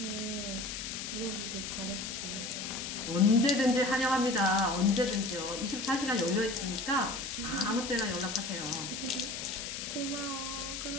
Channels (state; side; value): noise; left; hiss, 6 dB below the sound